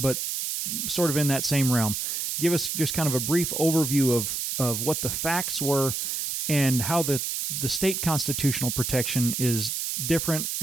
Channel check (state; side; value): noise; right; hiss, 2 dB below the sound